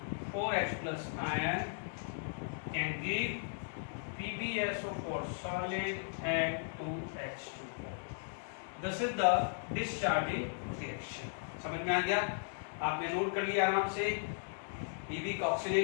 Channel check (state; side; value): silent; right; digital silence